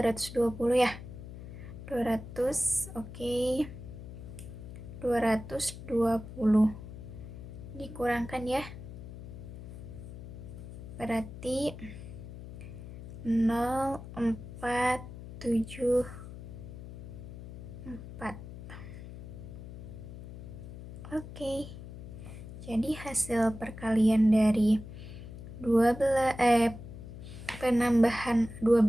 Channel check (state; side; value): noise; left; hum, 12 dB below the sound